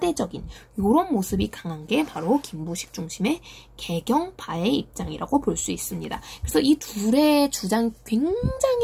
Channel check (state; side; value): identical; both; correlation 1.00